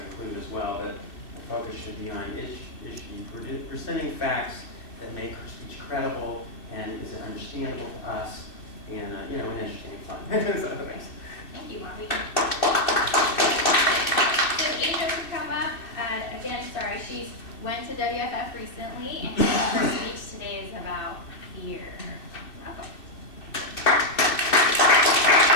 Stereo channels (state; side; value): late; right; 2.6 ms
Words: as well, but the focus should be on is she presenting facts that make her speech credible and is it understandable to us and and interesting and fun. So, thanks. Thank you, Bobby. So Asia could come up. Again, sorry, she went to WFF recently, and her speech today is about fear. Welcome.